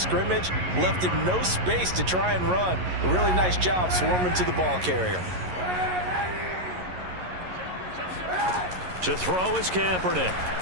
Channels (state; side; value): late; left; 11 ms